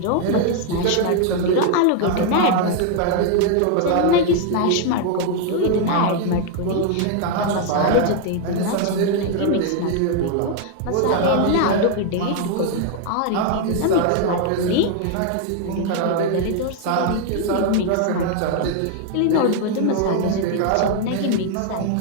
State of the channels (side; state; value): both; different; correlation 0.00